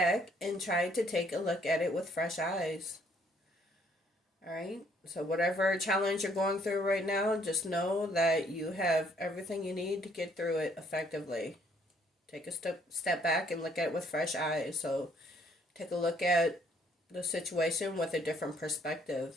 and try to take a look at it with fresh eyes. Alright, so whatever challenge you're going through right now, just know that you have everything you need to get through it effectively. Take a step back and look at it with fresh eyes. So take a look at the situation with a different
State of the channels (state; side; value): normal; both; correlation 0.65